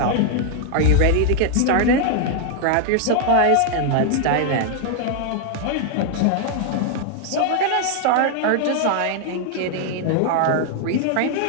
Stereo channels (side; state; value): both; different; correlation 0.00